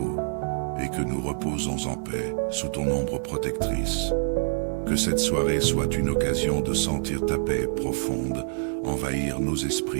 et que nous reposons en paix sous ton ombre protectrice. Que cette soirée soit une occasion de sentir ta paix profonde envahir nos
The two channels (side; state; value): left; silent; 61 dB below the other